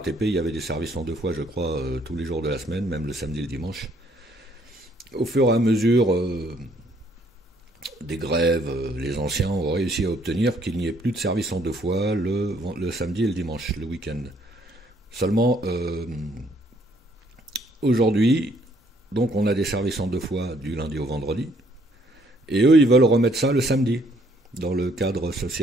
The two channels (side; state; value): both; normal; correlation 0.66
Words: il y avait des services en deux fois, je crois, tous les jours de la semaine, même le samedi et le dimanche. Au fur et à mesure... des grèves, les anciens ont réussi à obtenir qu'il n'y ait plus de service en deux fois le samedi et le dimanche, le week-end. Seulement, aujourd'hui, donc on a des services en deux fois du lundi au vendredi, et eux, ils veulent remettre ça le samedi, dans le cadre